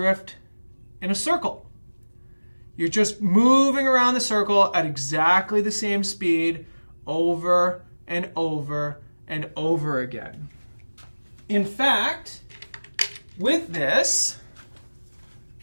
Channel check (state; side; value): inverted; both; correlation -1.00